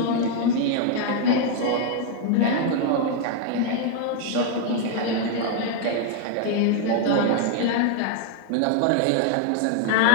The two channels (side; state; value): both; different; correlation 0.00